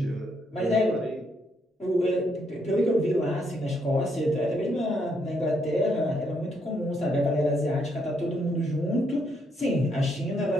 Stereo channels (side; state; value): both; normal; correlation 0.74